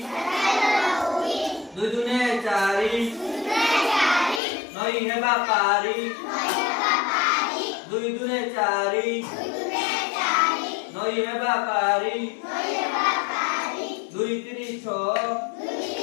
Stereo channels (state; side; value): drops out; right; at 4.4 s